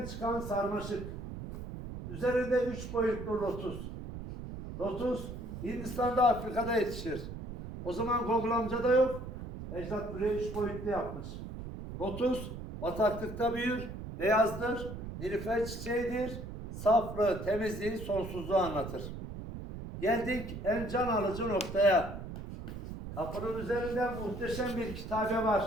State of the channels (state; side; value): noise; right; rumble, 9 dB below the sound